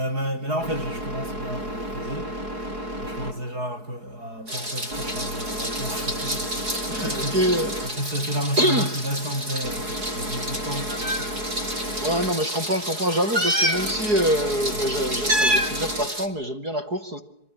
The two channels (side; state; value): left; late; 4.7 ms